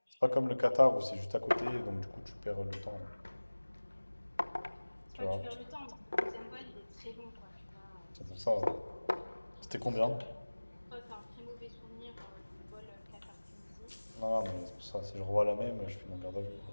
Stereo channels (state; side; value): inverted; both; correlation -1.00